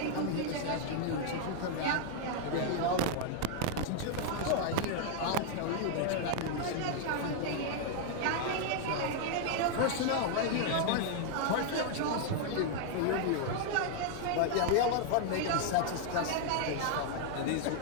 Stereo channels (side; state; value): both; different; correlation 0.00